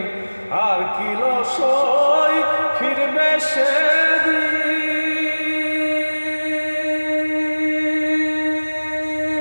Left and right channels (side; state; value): both; inverted; correlation -1.00